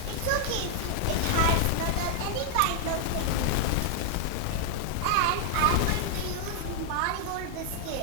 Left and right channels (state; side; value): different; both; correlation 0.00